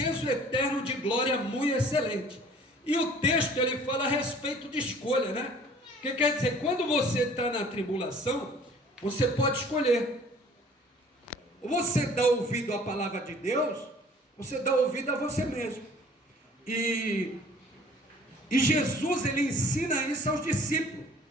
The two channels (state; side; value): normal; both; correlation 0.51